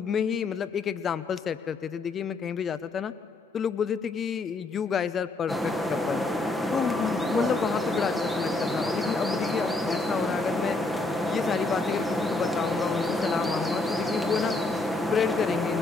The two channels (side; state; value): right; quieter; 3.4 dB